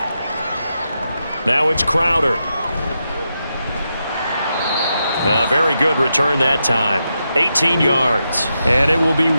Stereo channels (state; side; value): inverted; both; correlation -0.86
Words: Now it's Crowder. A very good return that time. 18 yards. And it will be